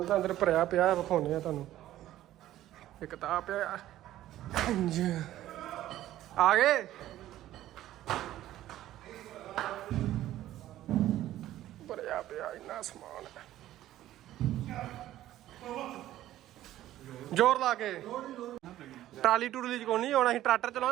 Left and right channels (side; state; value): left; quieter; 13.8 dB